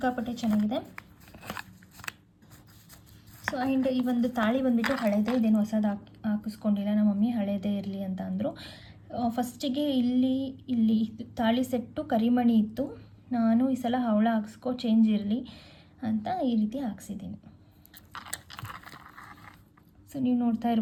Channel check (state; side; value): identical; both; correlation 1.00